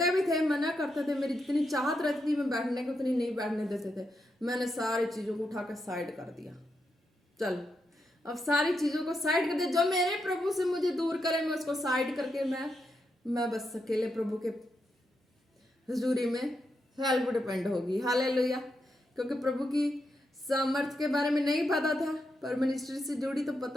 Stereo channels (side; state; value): both; normal; correlation 0.84